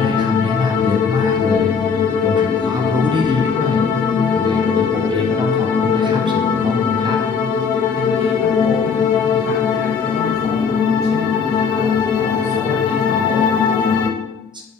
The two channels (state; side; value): quieter; right; 5.8 dB